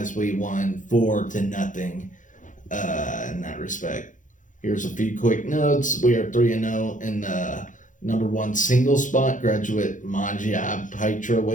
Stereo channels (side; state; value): right; late; 0.37 ms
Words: we won 4-0 in that respect. Here's a few quick notes. We are 3-0 in the number one single spot. Graduate Maja